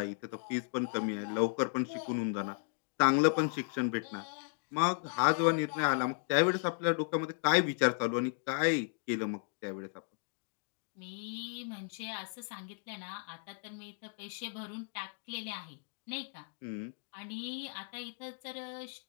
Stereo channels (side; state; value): right; silent; 54 dB below the other